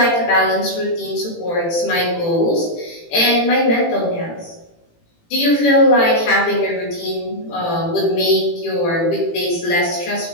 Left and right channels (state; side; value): late; right; 18 ms